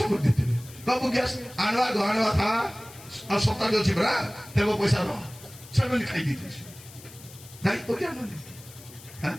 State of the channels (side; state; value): left; noise; hiss, 19 dB below the sound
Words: କରିଦେଇଥିବେ ବାବୁ ଗ୍ୟାସ୍ ଆଣିବା ଥା ଆଉ ସପ୍ତାହରେ ଅଛି ପରା ଦେବ ପଇସା ରହ ସେମାନେ ଖାଇ ଦେଇଥିବେ ଦାୟିତ୍ୱ ଜ୍ଞାନ ନେବେ